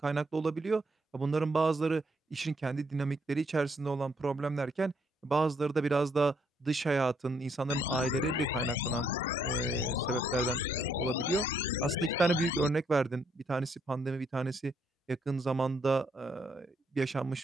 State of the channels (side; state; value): both; normal; correlation 0.72